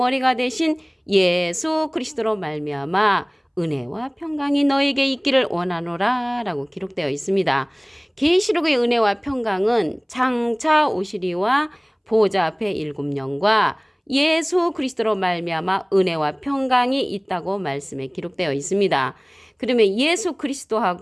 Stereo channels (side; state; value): both; identical; correlation 1.00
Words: 되신 예수 그리스도로 말미암아 은혜와 평강이 너에게 있기를 원하노라 라고 기록되어 있습니다. 계시록의 은혜와 평강은 장차 오시리와 보좌 앞에 7영과 예수 그리스도로 말미암아 은혜와 평강이 있다고 말씀에 기록되어 있습니다. 그러면 예수